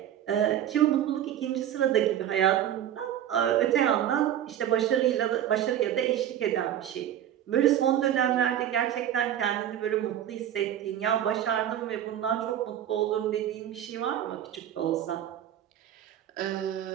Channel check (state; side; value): quieter; left; 10.9 dB